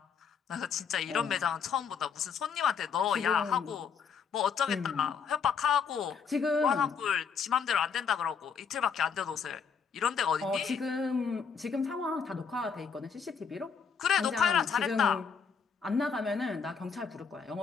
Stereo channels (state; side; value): quieter; right; 6.2 dB